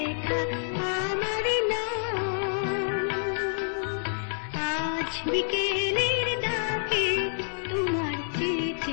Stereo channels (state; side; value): silent; right; 59 dB below the other